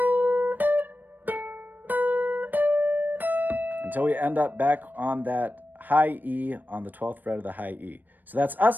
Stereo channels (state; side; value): late; left; 0.089 ms